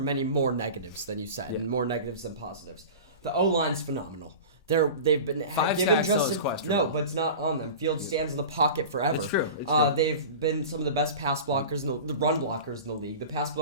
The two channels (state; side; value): inverted; both; correlation -0.33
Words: more negatives than you said, and more negatives than positives. The O-line's phenomenal. They've been given Justin. No, but it's not on them. Fields stands in the pocket forever. It's true. They've been some of the best pass blockers, the run blockers in the league. The pass